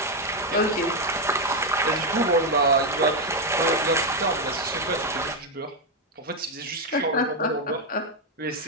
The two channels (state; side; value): normal; both; correlation 0.04